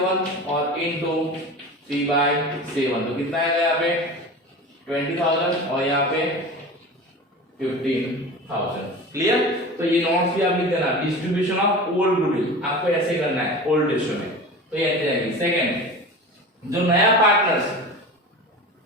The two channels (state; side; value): normal; both; correlation 0.33